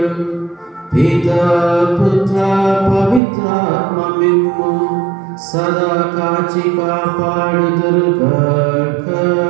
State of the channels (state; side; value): drops out; left; at 3.2 s